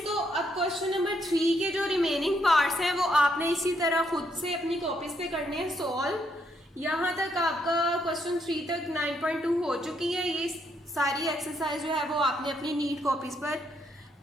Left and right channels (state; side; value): normal; both; correlation 0.75